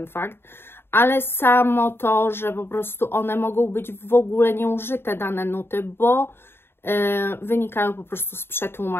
fakt, ale samo to, że po prostu one mogą być w ogóle nieużyte, dane nuty, bo wynikają po prostu z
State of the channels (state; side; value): late; right; 0.11 ms